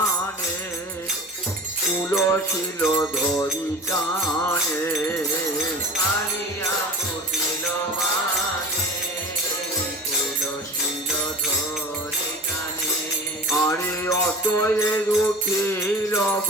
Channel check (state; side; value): normal; both; correlation 0.37